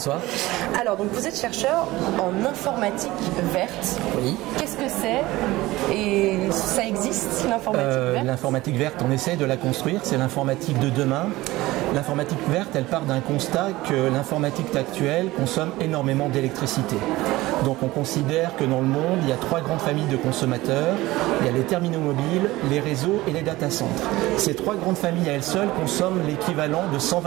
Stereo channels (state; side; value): quieter; left; 18.6 dB